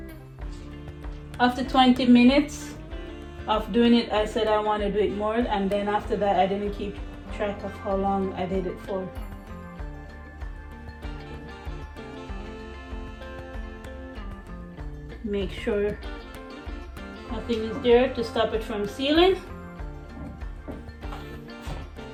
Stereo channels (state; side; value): identical; both; correlation 1.00